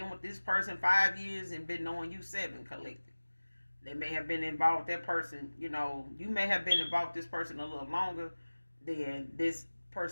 with this person 5 years and been knowing you 7 collective. They may have been involved with that person, you may have been involved with this person a little longer than this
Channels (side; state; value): both; inverted; correlation -1.00